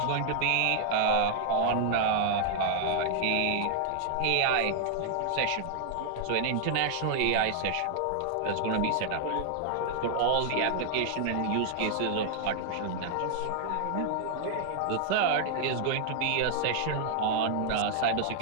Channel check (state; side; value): different; both; correlation 0.00